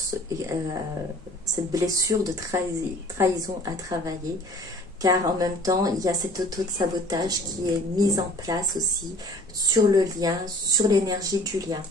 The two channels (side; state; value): both; normal; correlation 0.50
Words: cette blessure de trahison à travailler, car en même temps, il y a cet auto-sabotage qui est mis en place aussi sur le lien, sur l'énergie du lien.